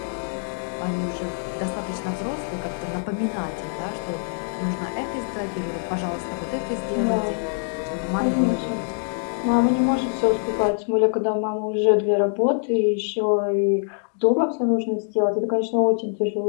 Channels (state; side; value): silent; right; digital silence